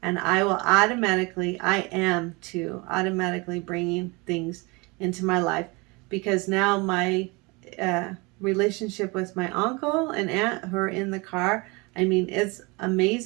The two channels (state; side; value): quieter; left; 26.8 dB